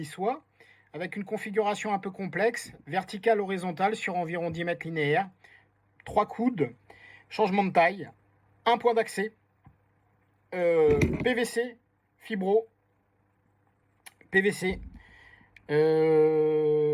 avec une configuration un peu complexe, verticale, horizontale, sur environ 10 mètres linéaires, 3 coudes, changement de taille, un point d'accès, PVC, fibro, PVC,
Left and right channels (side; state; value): both; identical; correlation 1.00